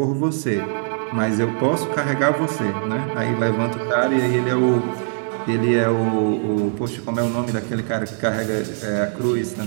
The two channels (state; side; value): silent; left; 65 dB below the other